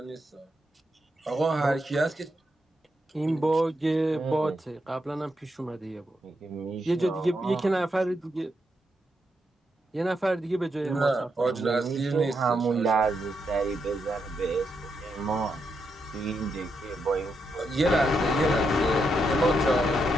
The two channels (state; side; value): normal; both; correlation 0.82